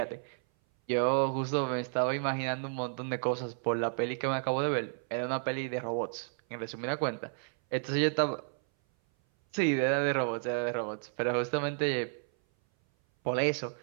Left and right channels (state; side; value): silent; left; 57 dB below the other